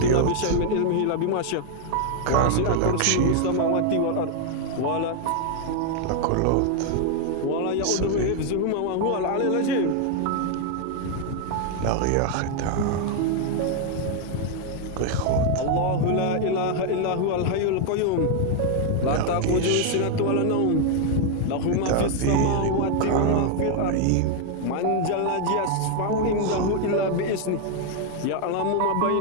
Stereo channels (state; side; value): different; both; correlation 0.00